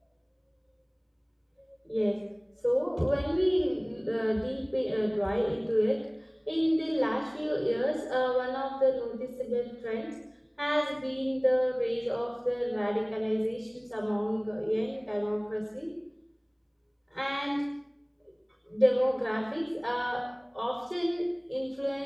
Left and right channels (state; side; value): identical; both; correlation 1.00